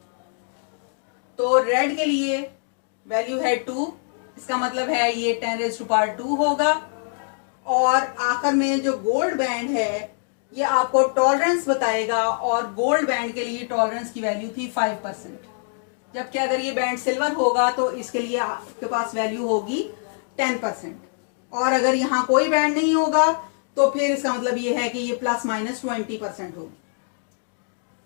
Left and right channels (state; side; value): silent; right; digital silence